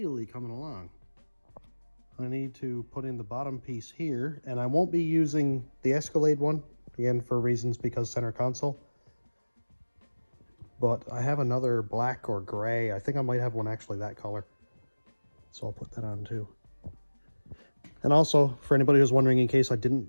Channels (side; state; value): both; inverted; correlation -1.00